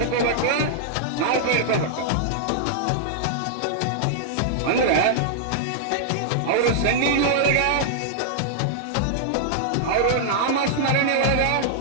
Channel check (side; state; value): both; different; correlation -0.01